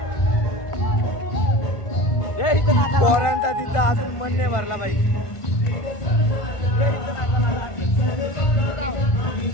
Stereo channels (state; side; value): late; right; 1.5 ms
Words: पोरांचा तिथं अजून मन नाही भरला बाई.